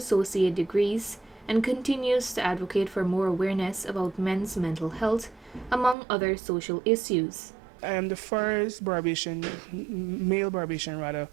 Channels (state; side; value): drops out; left; at 6.0 s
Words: degrees and continues to advocate for more awareness about men's mental health, among other social issues. I am the first male Barbadian rather,